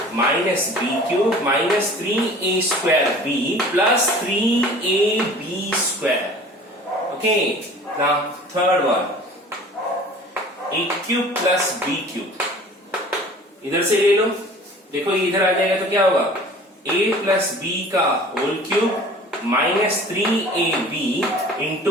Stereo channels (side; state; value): both; normal; correlation 0.45